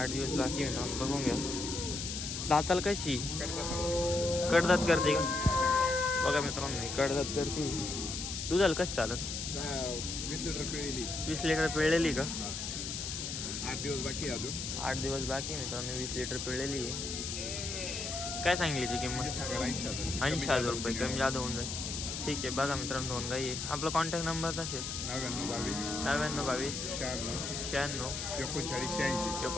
दिवस बाकी मित्रांनो, बघून घ्या। दाताला कशी? कडदात करते का? बघा मित्रांनो, कडदात करते। दुधाला कसं चालत? 20 लिटर पिळलेली। 20 लिटर पिळलेली का? 8 दिवस बाकी अजून। 8 दिवस बाकी मित्रांनो, 20 लिटर पिळलेली आहे। काय सांगली ती किंमत? 80,000 रुपये। कमी जादा होऊन जाईल। ठीक आहे। बघा मित्रांनो, दोन गाई आहे। आपला कॉन्टॅक्ट नंबर असेल 9922 96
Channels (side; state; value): left; noise; hiss, 4 dB below the sound